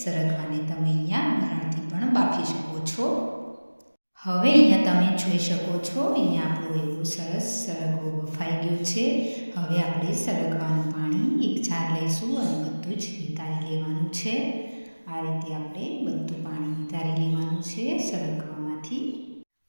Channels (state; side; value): inverted; both; correlation -1.00